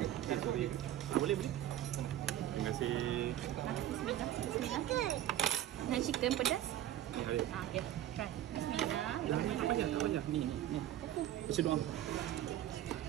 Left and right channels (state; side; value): quieter; left; 12.5 dB